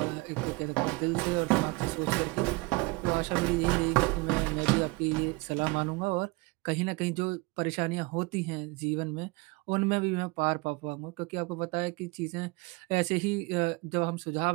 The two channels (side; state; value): left; quieter; 25.1 dB